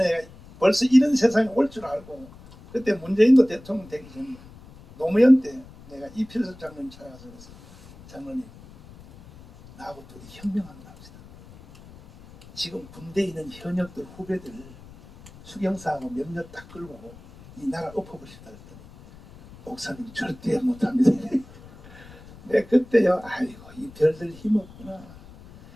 벌써 이런 세상이 올 줄 알고, 그때 문재인도 대통령 되기 전에 노무현 때 내가 이필섭 장로님 찾아가서 그래서, 장로님, 나하고 둘이 혁명한다 합시다. 지금 군대에 있는 현역들 후배들 수경사하고 몇몇 딱 끌고 이 나라 엎어보시다 했더니, 목사님 절대 못합니다. 내 그때요, 아이고 이 별들 힘없구나.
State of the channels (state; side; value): noise; left; rumble, 21 dB below the sound